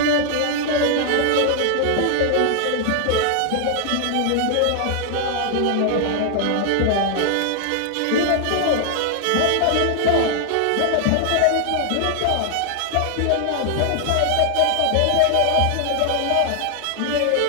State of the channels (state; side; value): different; both; correlation 0.00